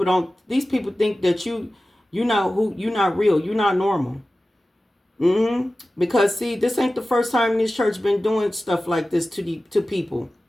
think that you're not real. You're not normal. Because see, this ain't the first time this church been doing stuff like this to people.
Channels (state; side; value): normal; both; correlation 0.95